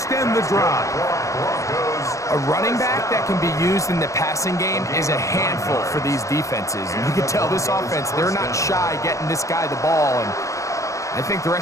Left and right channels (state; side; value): late; right; 0.15 ms